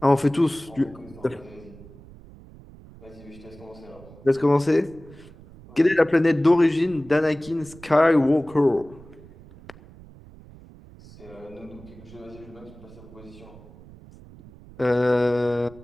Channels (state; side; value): noise; right; rumble, 21 dB below the sound